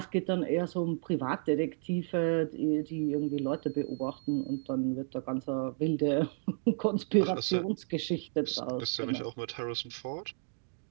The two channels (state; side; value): silent; left; digital silence